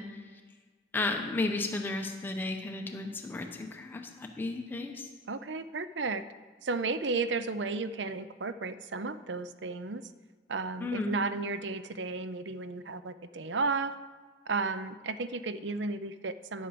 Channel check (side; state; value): both; normal; correlation 0.15